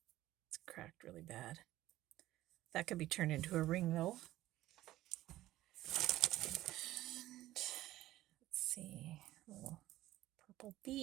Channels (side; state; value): left; quieter; 15.2 dB